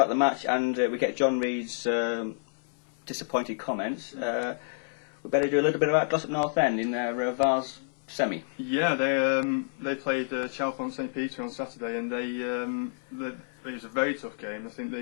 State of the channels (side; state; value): right; silent; 59 dB below the other